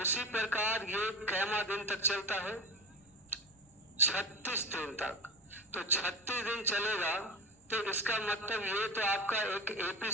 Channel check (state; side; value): normal; both; correlation 0.28